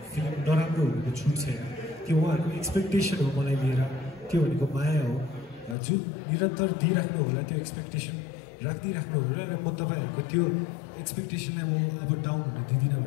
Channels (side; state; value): right; drops out; at 5.8 s